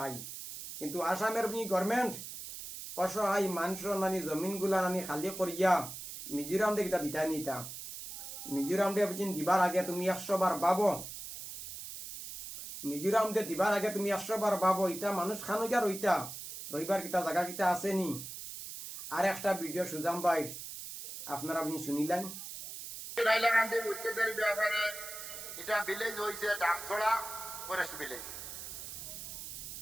কিন্তু আসামের গভর্নমেন্ট অসহায় মানুষের নানি জমিন গুলা নানি খালি করিয়া মিজোরাম দে কিতা দিতা নিতা। মিজোরাম দে বুঝি দিবার আগে তুমি 100 বার ভাবো। মিজোরাম দে দিবার আগে তুমি 100 বার ভাবো, ইটা মানুষ খানো গিয়া রইবার কিতা জায়গা কিতা আসেনি। আর একটা ভিডিও সুজাম ভাই আপনারা আপনি শুনিলেন। হাইলাকান্দি উচ্ছেদের ব্যাপারে এটা ভিলেজ হয়েছে ডামছড়া ফরেস্ট ভিলেজ।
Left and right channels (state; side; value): noise; right; hiss, 9 dB below the sound